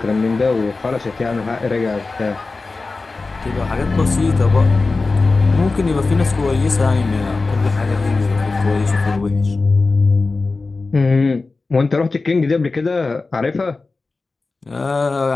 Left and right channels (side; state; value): right; quieter; 3.7 dB